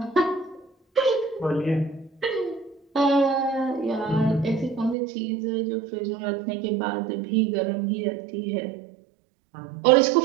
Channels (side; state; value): left; drops out; at 5.0 s